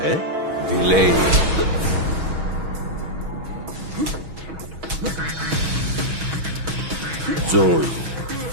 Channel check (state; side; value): late; left; 6.2 ms